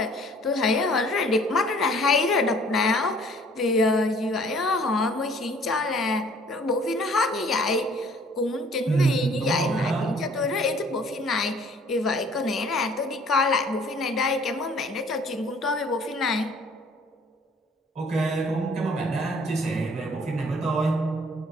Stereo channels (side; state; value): both; normal; correlation 0.56